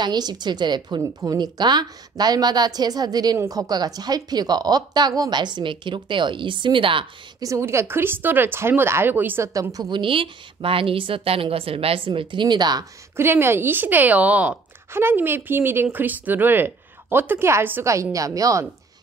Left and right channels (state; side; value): quieter; left; 4.3 dB